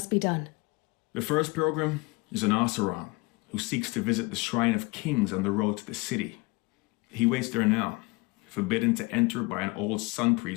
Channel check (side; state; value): right; quieter; 24.8 dB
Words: be done? The first pilgrim is an Oseram who seeks to visit the Shrine of Kings on the road to the city. He waits there now, forbidden to enter by an old sun